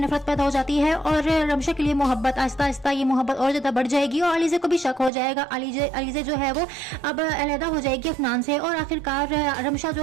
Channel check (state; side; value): drops out; left; at 5.1 s